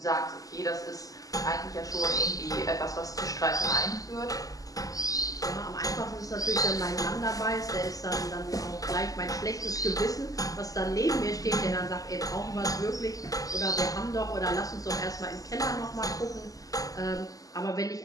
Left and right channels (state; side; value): late; right; 0.17 ms